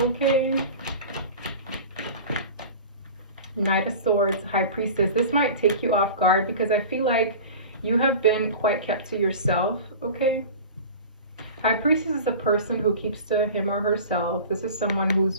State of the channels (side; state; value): both; inverted; correlation -0.36